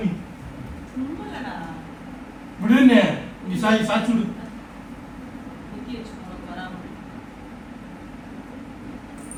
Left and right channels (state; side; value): identical; both; correlation 1.00